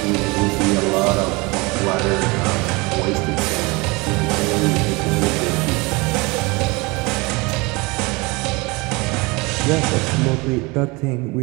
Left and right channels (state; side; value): quieter; left; 25.6 dB